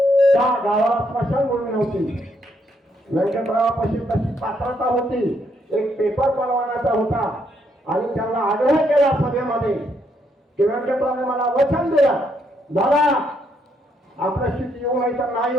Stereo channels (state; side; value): normal; both; correlation 0.74